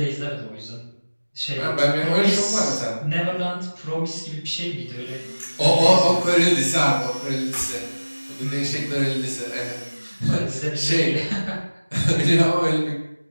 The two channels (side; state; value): both; inverted; correlation -1.00